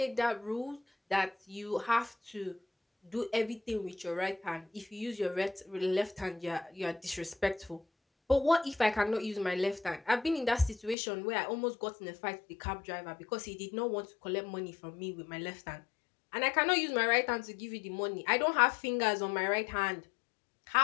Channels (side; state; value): right; drops out; at 11.0 s